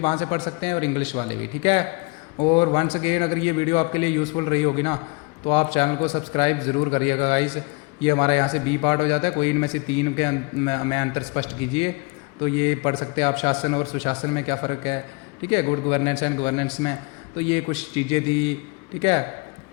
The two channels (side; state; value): right; quieter; 29.2 dB